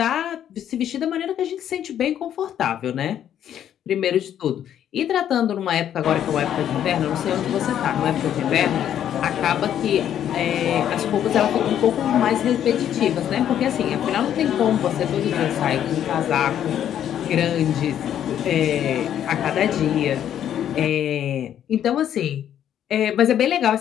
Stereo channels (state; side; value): quieter; right; 10.2 dB